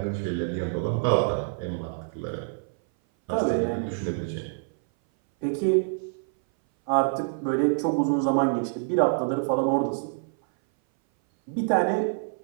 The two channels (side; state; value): left; silent; 58 dB below the other